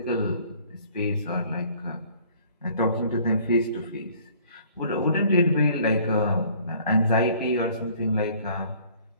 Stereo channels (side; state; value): both; inverted; correlation -0.55